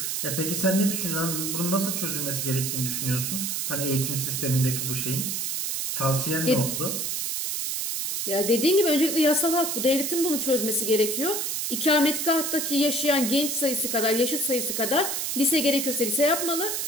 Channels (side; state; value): right; noise; hiss, 1 dB below the sound